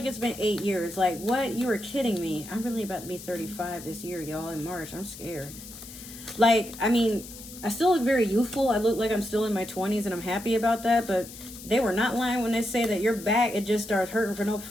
it's been 8 years. Like, what? You were kidding me. I'm really about to be 35 this year, y'all, in March. I'm scared. Like, I mean, I still look very youthful. I look like I'm still in my 20s, and I'm happy about that. But they were not lying when they say that your back, it just starts hurting for no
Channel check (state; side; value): noise; left; hiss, 15 dB below the sound